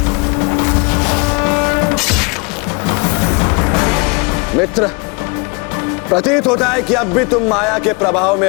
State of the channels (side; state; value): right; quieter; 30.7 dB